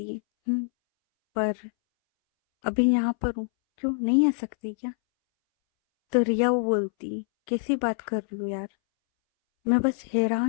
है, पर अभी यहाँ पर हूँ, क्यों नहीं आ सकती क्या? तो रिया वो बोलती है, कैसी बात कर रही हो यार, मैं बस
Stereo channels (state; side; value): silent; right; 61 dB below the other